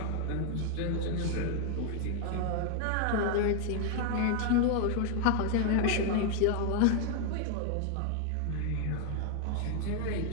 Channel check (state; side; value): different; both; correlation 0.00